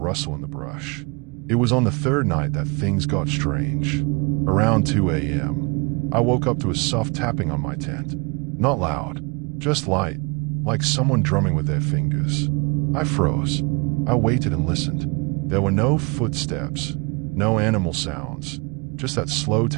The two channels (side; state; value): left; quieter; 29.7 dB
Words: in the brush. It was on the third night that things got strange. Around 2 a.m., I woke up to a soft tapping on my tent. Not loud, just light, like someone drumming with their fingers. I froze. I waited and listened. There were no footsteps, no animal sounds, just that slow